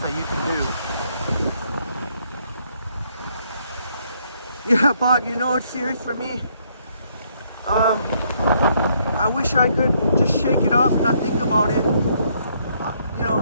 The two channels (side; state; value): both; inverted; correlation -0.70